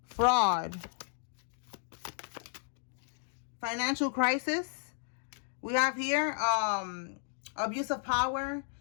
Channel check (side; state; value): right; silent; digital silence